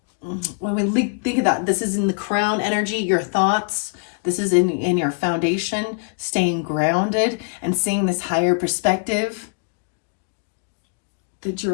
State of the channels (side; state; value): right; quieter; 39.2 dB